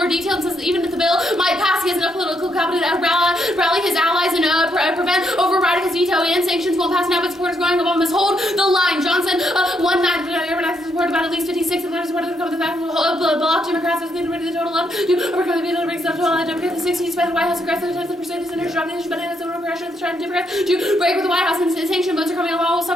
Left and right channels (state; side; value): normal; both; correlation 0.76